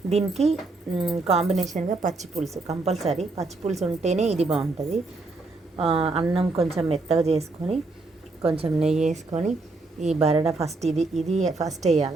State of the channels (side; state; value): left; quieter; 3.4 dB